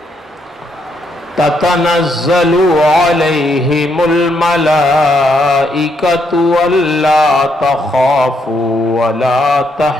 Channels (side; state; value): both; normal; correlation 0.75